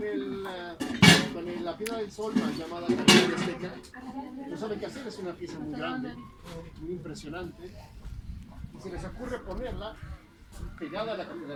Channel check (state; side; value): identical; both; correlation 1.00